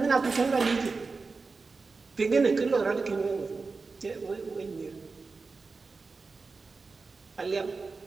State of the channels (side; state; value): left; quieter; 4.2 dB